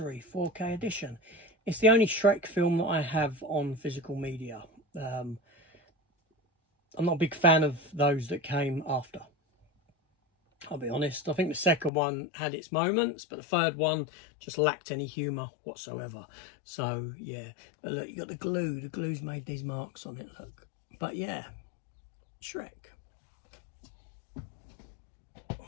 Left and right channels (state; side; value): drops out; right; at 11.9 s